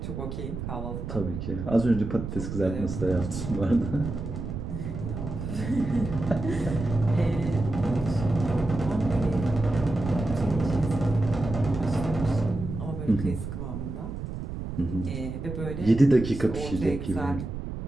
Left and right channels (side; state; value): right; noise; rumble, 6 dB below the sound